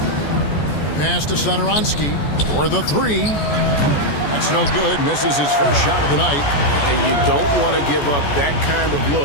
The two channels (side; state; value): right; late; 14 ms